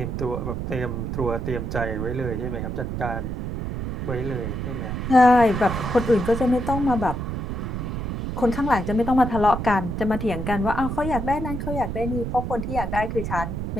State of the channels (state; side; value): noise; right; rumble, 4 dB below the sound